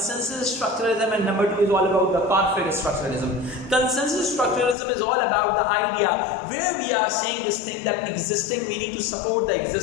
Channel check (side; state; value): right; drops out; at 4.8 s